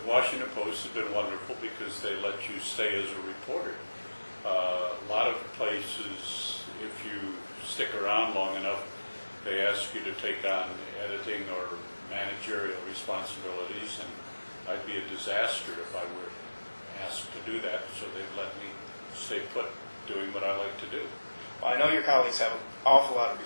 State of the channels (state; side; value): inverted; both; correlation -1.00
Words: Washington Post has been wonderful because they let you stay as a reporter. A lot of places, if you stick around long enough, they ask you to take on editing or managerial responsibilities, and I'd be a disaster if I were asked to do that, so they've let me stay put doing what I like to do. Well, I know your colleagues have an awful lot of